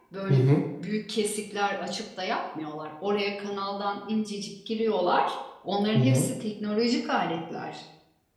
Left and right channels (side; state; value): both; identical; correlation 1.00